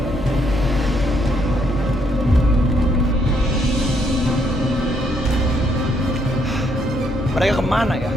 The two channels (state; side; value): normal; both; correlation 0.72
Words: Mereka kemana ya?